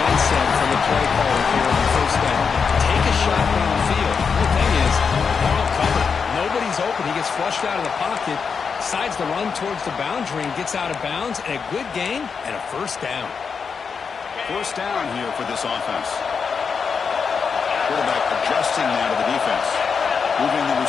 from the play caller here on the first down. Take a shot downfield. The thing is, they're all covered. Nobody's open. He gets flushed out of the pocket, decides to run towards the boundary and gets out of bounds, and a good gain and a first down. First down here for this offense. Quarterback adjusting now to the defense. Moving the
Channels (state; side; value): quieter; right; 5.8 dB